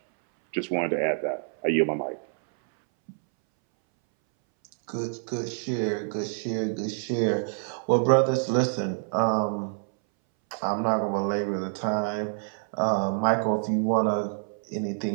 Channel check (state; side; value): silent; left; 60 dB below the other